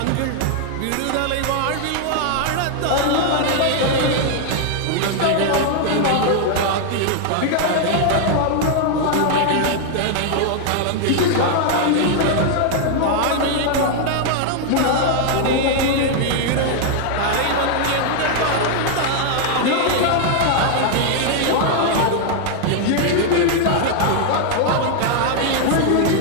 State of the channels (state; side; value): different; both; correlation 0.00